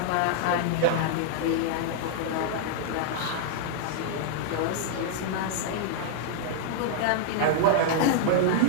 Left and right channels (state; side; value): different; both; correlation -0.01